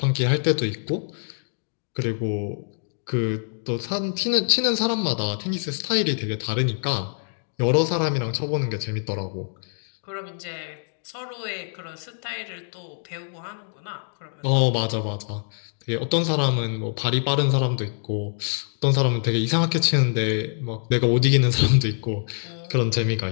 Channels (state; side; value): silent; right; digital silence